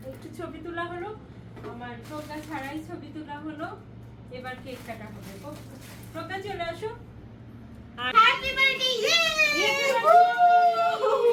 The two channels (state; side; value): identical; both; correlation 1.00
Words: একটু ছবি তোলা হলো, আমার প্রজ্ঞা ছাড়াই ছবি তোলা হলো, এবার কেক কাটা হবে। প্রজ্ঞা চলে আসো। আর হ্যাপি বার্থডে।